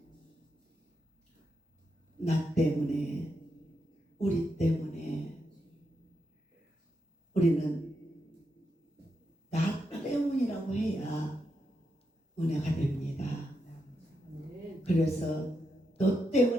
나 때문에, 우리 때문에, 우리는 나 때문이라고 해야 은혜가 됩니다. 그래서 너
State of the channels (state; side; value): normal; both; correlation 0.84